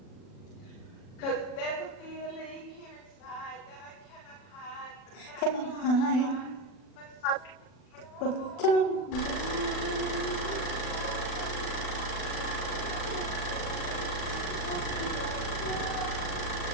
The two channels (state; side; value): late; right; 40 ms